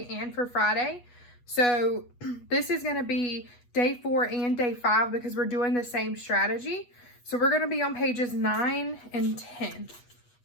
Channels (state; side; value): late; right; 8.3 ms